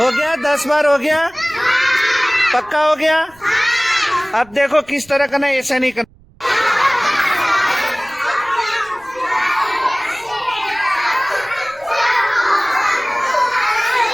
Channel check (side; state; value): right; noise; rumble, 28 dB below the sound